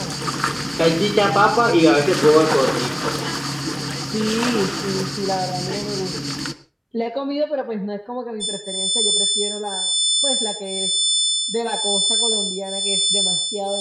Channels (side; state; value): both; identical; correlation 1.00